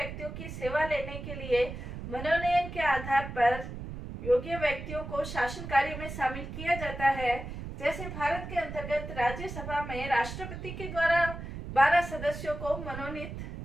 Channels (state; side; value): noise; right; rumble, 8 dB below the sound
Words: की सेवा लेने के लिए मनोनयन के आधार पर योग्य व्यक्तियों को शासन कार्य में शामिल किया जाता है। जैसे भारत के अंतर्गत राज्यसभा में राष्ट्रपति के द्वारा 12 सदस्यों को मनोनीत